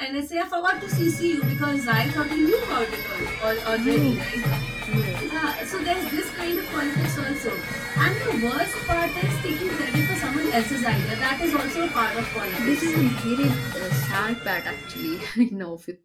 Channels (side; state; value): both; identical; correlation 1.00